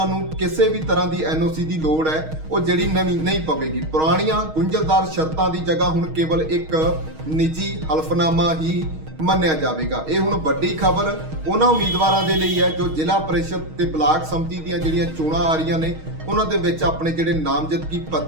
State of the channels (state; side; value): late; left; 6.4 ms